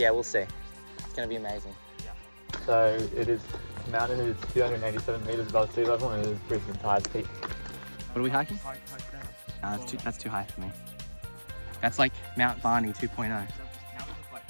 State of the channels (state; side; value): inverted; both; correlation -1.00